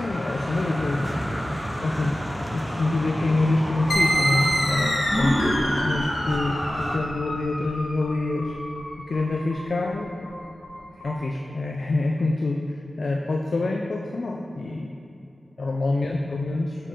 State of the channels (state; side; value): normal; both; correlation 0.95